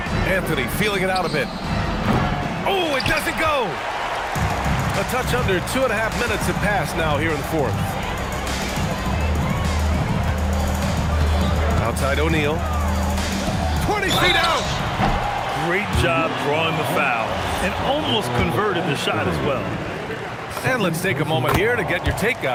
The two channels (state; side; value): identical; both; correlation 1.00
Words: Anthony feeling it out a bit. Oh, it doesn't go. A touch under 2.5 minutes have passed now here in the fourth. Outside O'Neal. 20 feet out. Great job drawing the foul and almost converted the shot as well. And let's take a moment here to get your take,